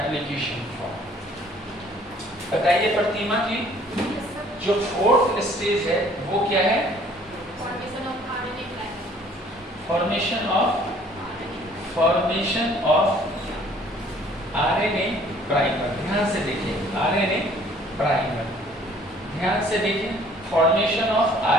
फॉर्क। बताइए प्रतिमा जी, जो फोर्थ स्टेज है वो क्या है? Formation of RNA primer. ध्यान से देखिए, आरएनए प्राइमर, ध्यान से देखिए, फॉर्मेशन ऑफ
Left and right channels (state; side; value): normal; both; correlation 0.57